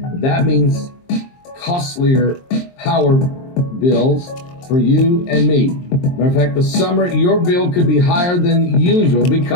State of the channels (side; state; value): right; late; 23 ms